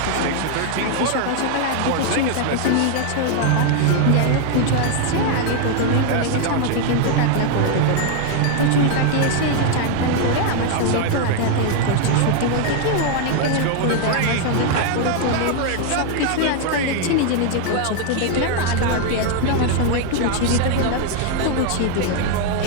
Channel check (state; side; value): different; both; correlation 0.00